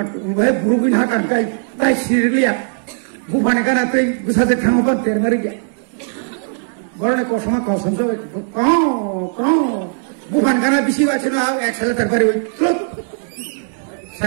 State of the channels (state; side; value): silent; left; 63 dB below the other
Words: wahai burubin hakan kai tai sirliya bufane kana tai busaje thangoban termari ge borone kosoma kosam so ko bufan kana bisi wachina excel terpari oi